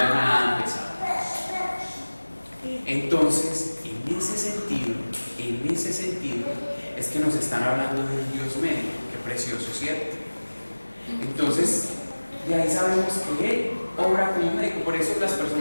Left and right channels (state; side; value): inverted; both; correlation -1.00